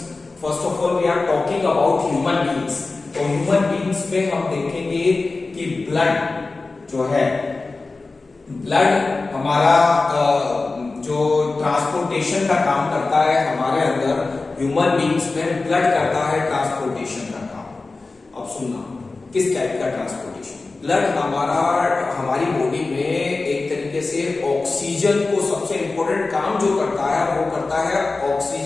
First of all, we are talking about human beings. तो human beings में हम देखेंगे कि blood जो है, blood हमारा जो transportation का काम करता है हमारे अंदर, ह्यूमन बीइंग्स में ब्लड करता है ट्रांसपोर्टेशन का काम। अब सुनना, किस टाइप का ट्रांसपोर्टेशन? ब्लड हमारी बॉडी में एक तरीके से ऑक्सीजन को, सबसे इंपॉर्टेंट काम जो करता है वो करता है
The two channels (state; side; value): quieter; right; 3.6 dB